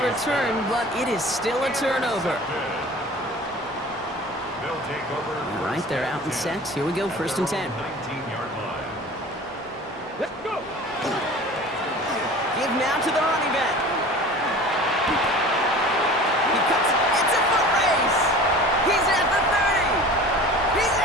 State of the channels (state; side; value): normal; both; correlation 0.41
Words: return, but it is still a turnover. All right, they're out and set. Here we go, 1st and 10. 19-yard line. Let's go. Give now to the running back. He cuts. It's a foot race. He's at the 30. He's